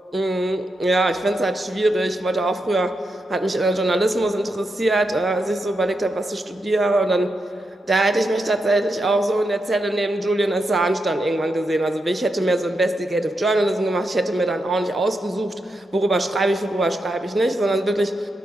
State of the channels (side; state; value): both; normal; correlation 0.85